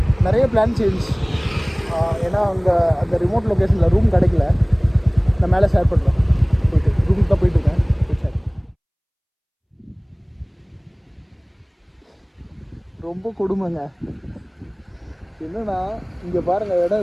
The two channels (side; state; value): both; identical; correlation 1.00